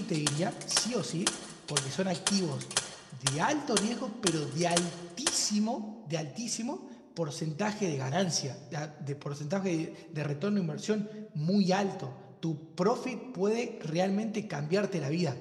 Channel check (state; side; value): identical; both; correlation 1.00